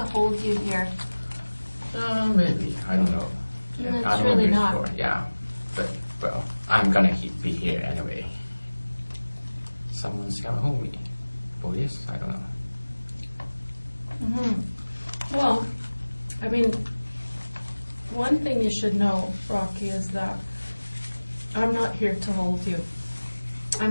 hold you here. Maybe. I don't know. No, it's I don't really know not. before. Yeah. But, well, I'm gonna be here anyway. Someone's gonna hold me. Police? I don't know. Well, I mean, one thing you should know, Rocky, is that I'm not here to hold you.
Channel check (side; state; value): both; inverted; correlation -1.00